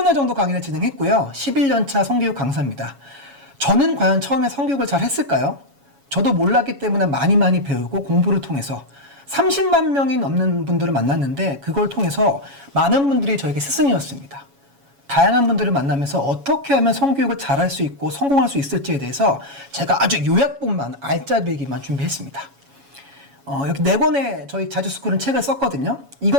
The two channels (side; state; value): left; late; 7.2 ms